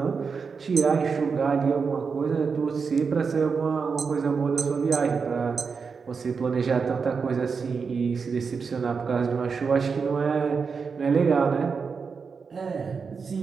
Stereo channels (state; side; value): quieter; left; 5.4 dB